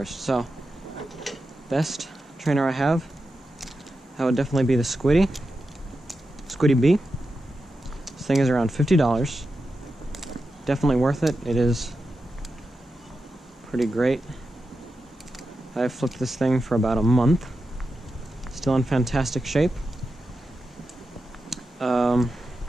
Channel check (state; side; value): normal; both; correlation 0.90